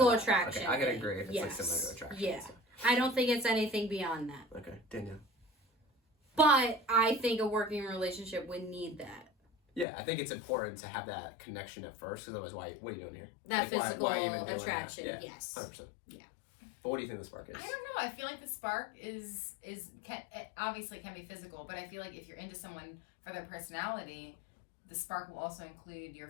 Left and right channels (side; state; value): right; drops out; at 9.9 s